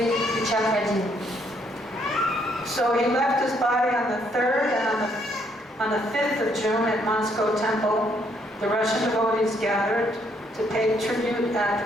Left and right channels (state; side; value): normal; both; correlation 0.70